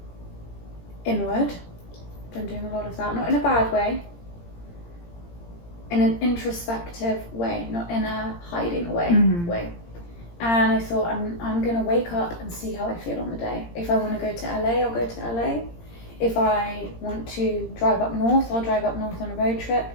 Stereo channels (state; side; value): late; right; 17 ms